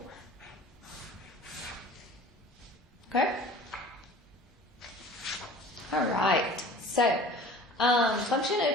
Okay? All right. So function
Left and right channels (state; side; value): normal; both; correlation 0.44